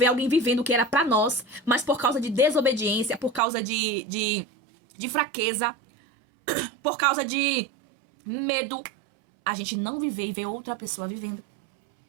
alguém vivendo o que era para nós, mas por causa de desobediência, por causa de fraqueza, por causa de medo, a gente não viver e ver outra pessoa vivendo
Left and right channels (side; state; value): left; drops out; at 3.4 s